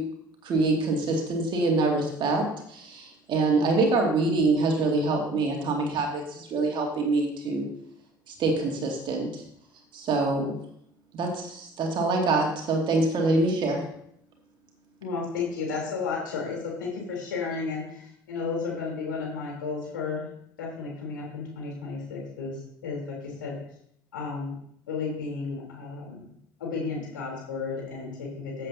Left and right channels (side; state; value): both; normal; correlation 0.46